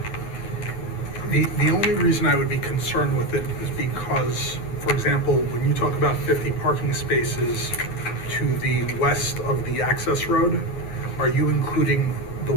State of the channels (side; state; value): right; late; 9.6 ms